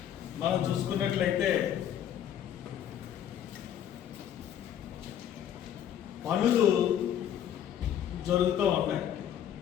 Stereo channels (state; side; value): quieter; right; 10.0 dB